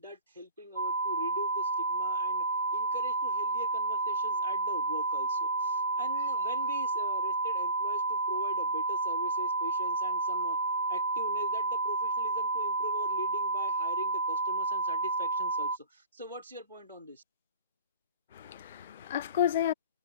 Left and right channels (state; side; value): inverted; both; correlation -0.40